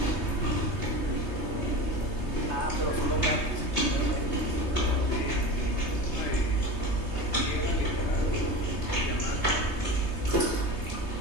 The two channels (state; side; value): late; right; 3.2 ms